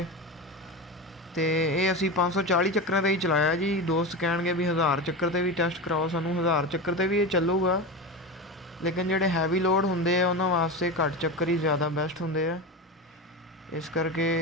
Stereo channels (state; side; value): normal; both; correlation 0.23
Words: ये असी 540 चक्कर ही चलाया जी। दोस्त कह भी 1000 चक्कर से भी टेस्ट कराओ, सानूं 1000 चक्कर से भी ये चलूगा, लेकिन जोड़े हैवी लोड होंगे उन्होंने वास्ते घट चक्कर ही ज़्यादा बेस्ट होंगे है। इस करके